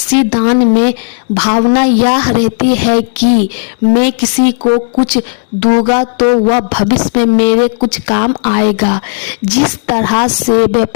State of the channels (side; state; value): right; silent; digital silence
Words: दान में भावना यह रहती है कि मैं किसी को कुछ दूंगा तो वह भविष्य में मेरे कुछ काम आएगा। जिस तरह से